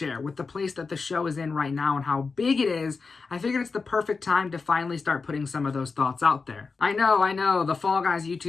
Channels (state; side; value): quieter; right; 4.5 dB